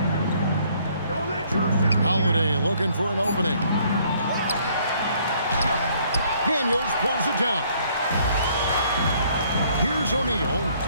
Holiday looking for an opening. Daniels pulls it down. Here's O'Neal.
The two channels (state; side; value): inverted; both; correlation -0.63